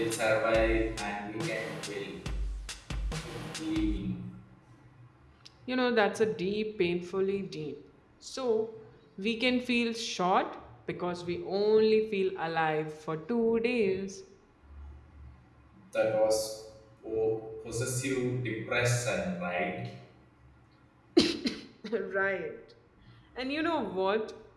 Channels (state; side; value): identical; both; correlation 1.00